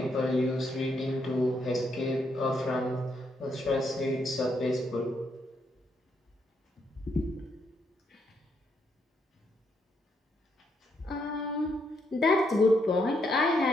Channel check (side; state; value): both; normal; correlation 0.76